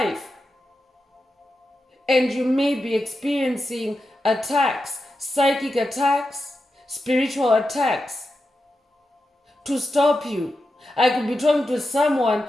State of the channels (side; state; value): both; normal; correlation 0.89